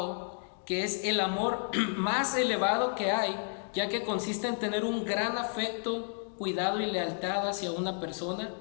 que es el amor más elevado que hay, ya que consiste en tener un gran afecto, cuidado y lealtad hacia una persona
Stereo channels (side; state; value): right; silent; 57 dB below the other